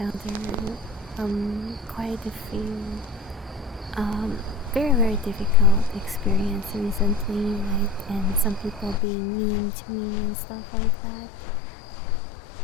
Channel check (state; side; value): drops out; right; at 9.0 s